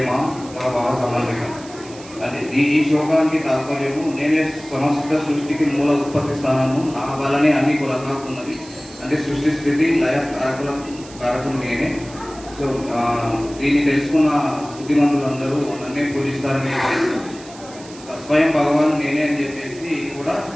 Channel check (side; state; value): right; noise; hiss, 19 dB below the sound